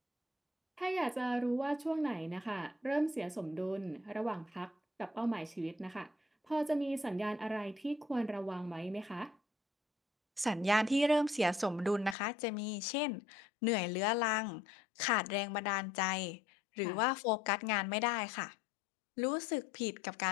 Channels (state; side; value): drops out; right; at 12.2 s